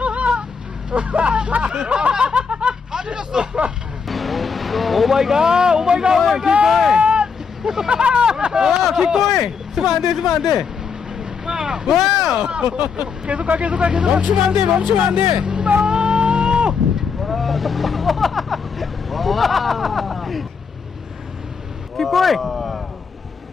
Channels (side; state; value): right; quieter; 5.8 dB